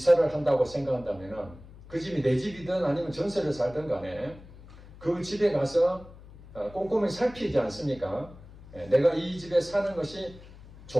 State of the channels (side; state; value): left; noise; hum, 19 dB below the sound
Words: 한다고 생각한다면은 그 집이 내 집이든 아니면 전세를 살든 간에 그 집에 가서 꼼꼼히 살피지 않습니까? 내가 이 집에 사는 것이